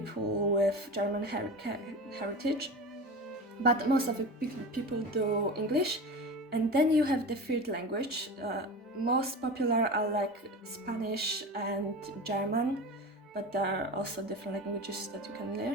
with German heritage. But most of the people do English. And then you have the third language. Most popular are like Spanish and German, but there are also different languages that you can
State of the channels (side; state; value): both; normal; correlation 0.29